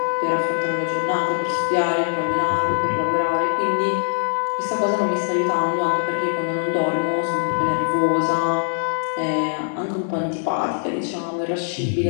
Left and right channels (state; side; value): silent; right; digital silence